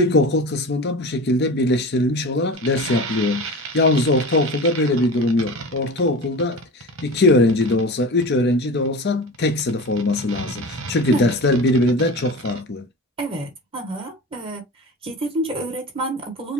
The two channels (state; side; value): normal; both; correlation 0.31